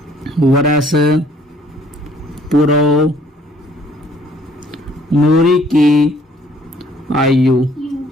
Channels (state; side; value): normal; both; correlation 0.61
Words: वर्ष पूर्व नूरी की आयु।